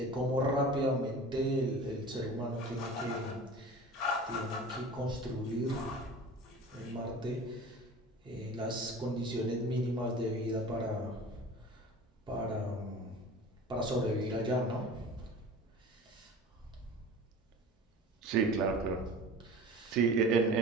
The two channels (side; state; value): both; normal; correlation 0.39